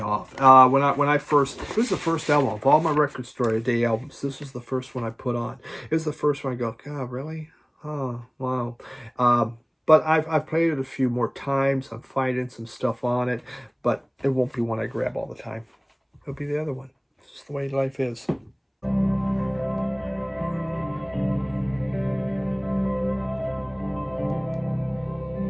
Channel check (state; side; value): identical; both; correlation 1.00